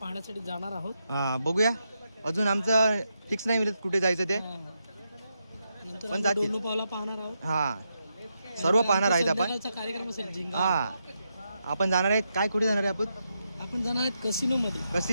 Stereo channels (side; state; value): both; inverted; correlation -0.84